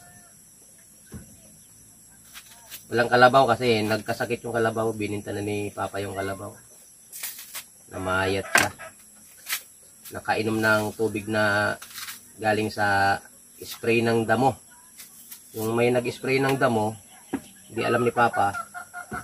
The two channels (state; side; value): identical; both; correlation 1.00